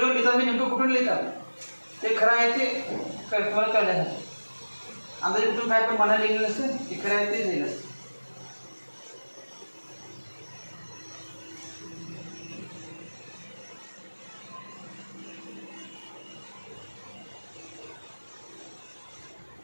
लिहितात मी नेमकं कुठून लिहितात ते खरं आहे ते तुम्हाला कळण्यासाठी. अंदाजे कुठून काय पण मनाला लिहिलेलं नसतं ते खरं आहे ते लिहिलं असतं.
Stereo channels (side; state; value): both; inverted; correlation -1.00